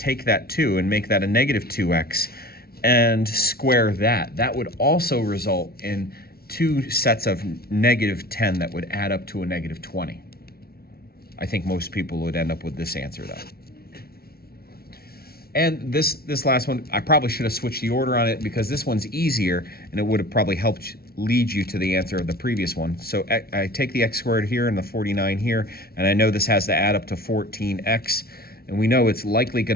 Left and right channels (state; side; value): late; right; 0.44 ms